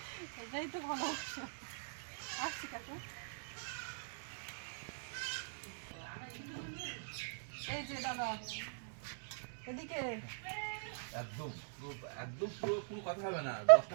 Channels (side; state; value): left; silent; digital silence